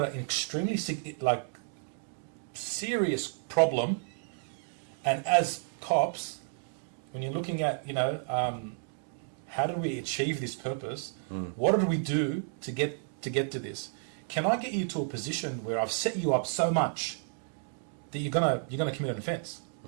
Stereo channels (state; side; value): silent; left; digital silence